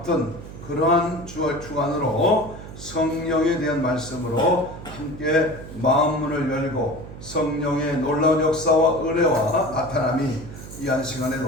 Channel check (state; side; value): noise; right; hum, 13 dB below the sound